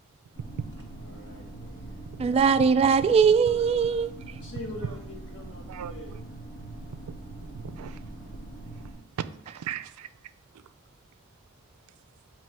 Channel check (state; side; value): quieter; left; 5.6 dB